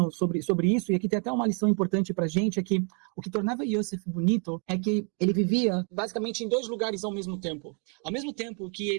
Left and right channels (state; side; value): quieter; left; 39.8 dB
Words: sobre isso, e aqui tem até uma lição importante pra gente, é que o que tornava Yosef bonito é que ele vivia basicamente em dois lugares ao mesmo tempo. Ao mesmo tempo que